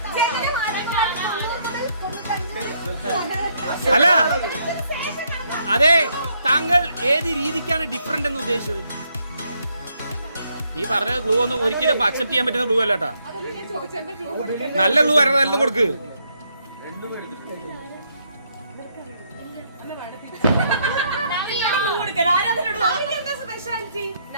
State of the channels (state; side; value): inverted; both; correlation -0.73